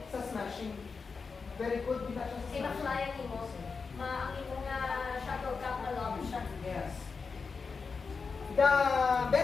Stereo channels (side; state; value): right; quieter; 4.9 dB